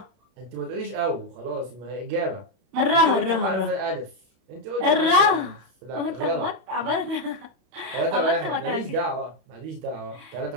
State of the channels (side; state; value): left; late; 31 ms